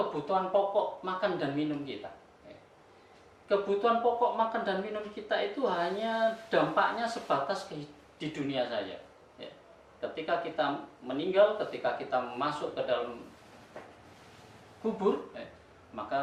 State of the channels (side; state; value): both; identical; correlation 1.00